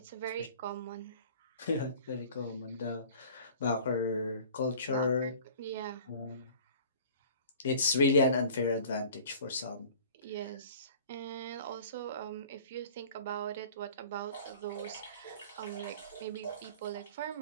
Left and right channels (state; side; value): inverted; both; correlation -0.45